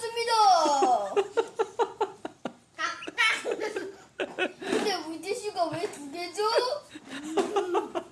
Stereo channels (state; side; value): identical; both; correlation 1.00